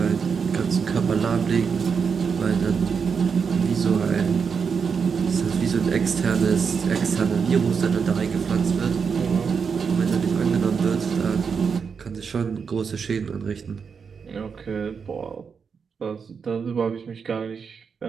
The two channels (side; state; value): left; quieter; 6.0 dB